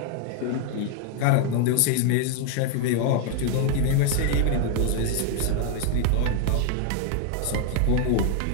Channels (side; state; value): both; different; correlation 0.00